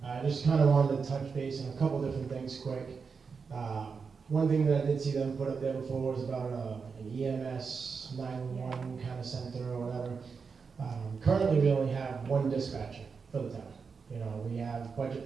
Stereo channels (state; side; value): quieter; left; 5.4 dB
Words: I just kind of wanted to touch base on a couple different things quick. One thing that I did see them put up there before was about an EMS 911 kind of center or whatever. Currently we only have one dispatcher for the town. You know, we have budget